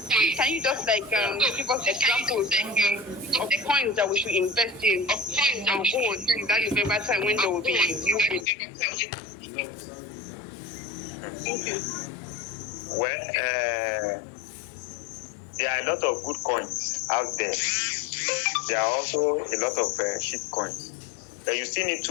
can you just give us examples of coins that we should invest in and hold that November time when there will be movement? Thank you. Well, there are a lot of good coins out there. There are also a lot of shit coins. But you still need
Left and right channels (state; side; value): drops out; right; at 8.5 s